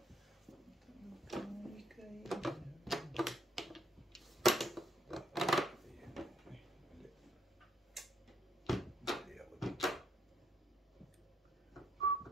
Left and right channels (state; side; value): normal; both; correlation 0.71